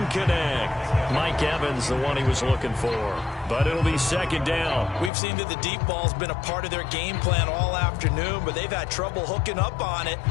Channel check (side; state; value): right; drops out; at 5.1 s